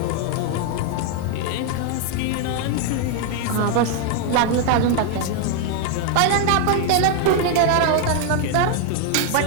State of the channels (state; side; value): different; both; correlation 0.01